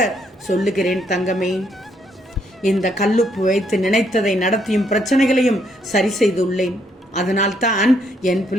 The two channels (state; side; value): normal; both; correlation 0.72